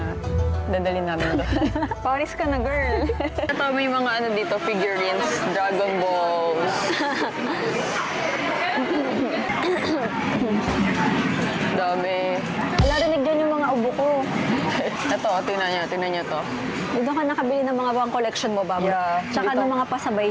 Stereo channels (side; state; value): both; identical; correlation 1.00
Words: dadalhin namin doon. Paris ka na, girl. Ito, may mga ano dito, figurines, Dragon Balls. Dami. Wala, rinig dyan yung mga ubo ko. Ito, tingnan niyo to. Dito ka nakabili ng mga pang collection mo, Bob. Yeah, Tsaka dito. ng mga pasabay